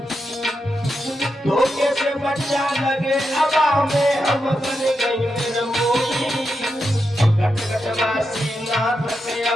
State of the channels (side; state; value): both; normal; correlation 0.86